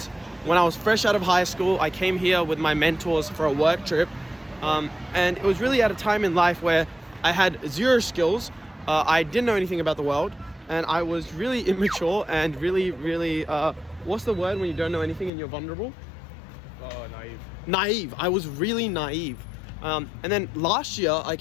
when I was fresh out of high school. I came here with my mentors for a work trip, and it was really at a time in life where I had zero skills. I didn't know anything about the world, and I was really immature and really, what's the word when you don't know anything and you're vulnerable? Oh, naive. Naive. I was really naive. And then last year I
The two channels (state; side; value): drops out; right; at 15.3 s